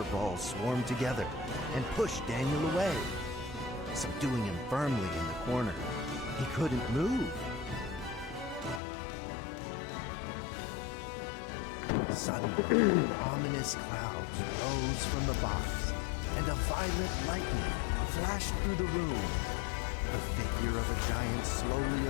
Balls swarmed together and pushed Daniel away, subduing him firmly in the corner. He couldn't move. Suddenly, ominous clouds rose from the box, and a violent lightning flashed through the room. The figure of a giant slowly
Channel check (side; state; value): right; drops out; at 8.8 s